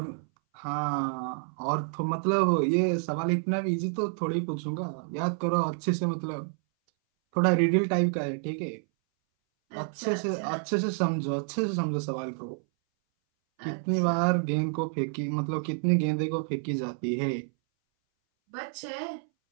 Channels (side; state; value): left; silent; 59 dB below the other